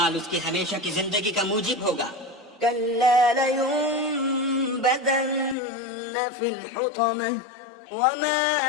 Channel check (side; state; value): right; drops out; at 5.6 s